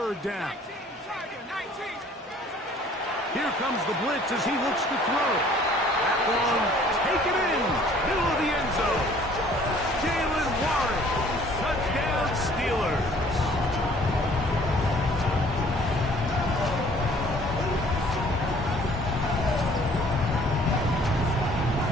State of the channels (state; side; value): normal; both; correlation 0.55